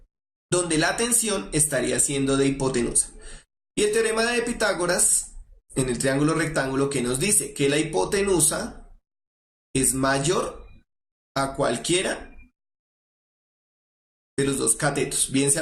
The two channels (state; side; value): identical; both; correlation 1.00